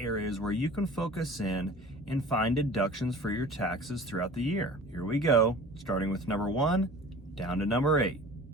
where you can focus in and find deductions for your taxes throughout the year. Here we go, starting with number 1 down to number 8.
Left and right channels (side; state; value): both; normal; correlation 0.42